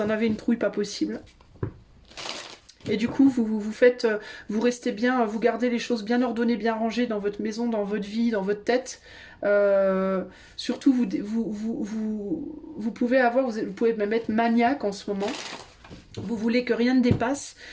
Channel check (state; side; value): identical; both; correlation 1.00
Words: en avez une trouille pas possible. Et du coup, vous restez bien, vous gardez les choses bien ordonnées, bien rangées dans votre maison, dans votre vie, dans votre tête. Surtout, vous pouvez même être maniaque en ce moment. Vous voulez que rien ne dépasse